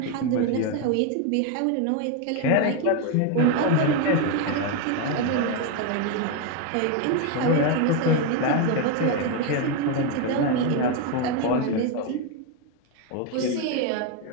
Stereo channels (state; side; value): different; both; correlation 0.02